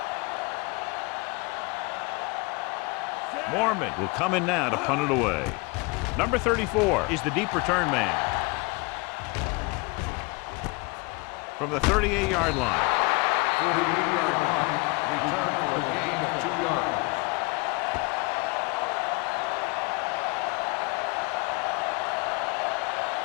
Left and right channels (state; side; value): quieter; right; 27.7 dB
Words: Mormon will come in now to punt it away. Number 34 is the deep return man. From the 38-yard line. 48-yard punt. Return for a gain of 2 yards.